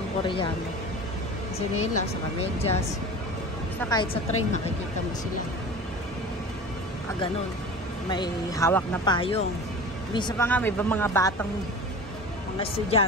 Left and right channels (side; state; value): both; normal; correlation 0.35